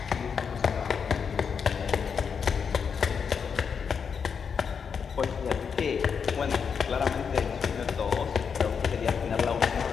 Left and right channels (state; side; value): quieter; right; 6.4 dB